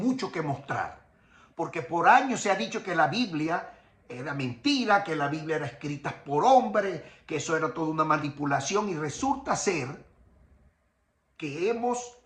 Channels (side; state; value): both; identical; correlation 1.00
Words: que mostrar, porque por años se ha dicho que la Biblia era mentira, que la Biblia era escrita por hombres, que eso era toda una manipulación, y resulta ser que hemos